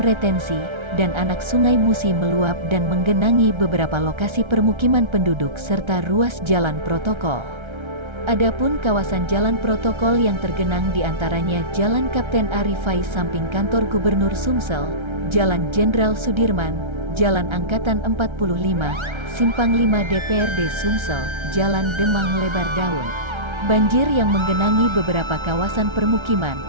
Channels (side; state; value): left; late; 1.3 ms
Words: retensi, dan anak sungai Musi meluap dan menggenangi beberapa lokasi permukiman penduduk serta ruas jalan protokol. Adapun kawasan jalan protokol yang tergenang diantaranya Jalan Kapten Arifai samping kantor Gubernur Sumsel, Jalan Jenderal Sudirman, Jalan Angkatan 45, Simpang 5 DPRD Sumsel, Jalan Demang Lebar Daun. Banjir yang menggenangi beberapa kawasan permukiman